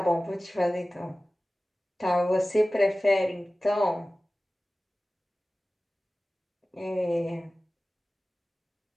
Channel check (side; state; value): both; normal; correlation 0.97